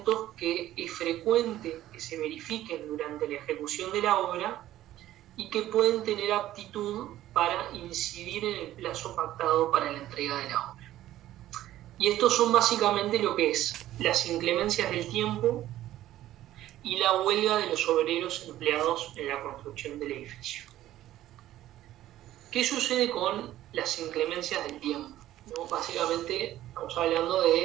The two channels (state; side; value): quieter; left; 13.8 dB